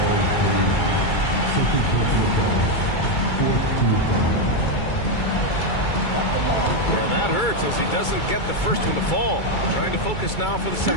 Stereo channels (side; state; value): right; late; 2.3 ms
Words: And that hurts as he doesn't get the first one to fall. Trying to focus now for the